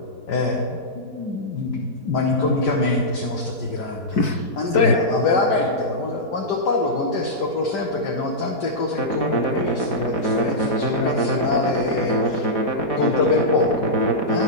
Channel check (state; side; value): late; right; 4.6 ms